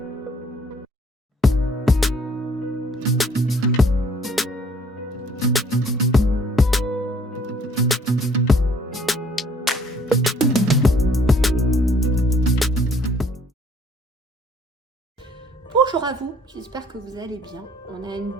Bonjour à vous, j'espère que vous allez bien. On a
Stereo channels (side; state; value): both; normal; correlation 0.60